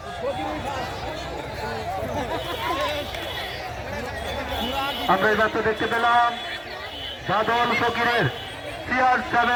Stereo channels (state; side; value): identical; both; correlation 1.00